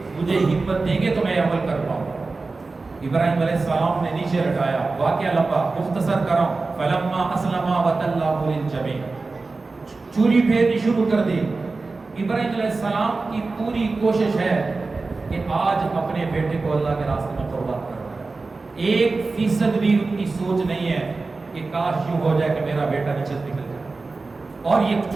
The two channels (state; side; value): quieter; left; 3.8 dB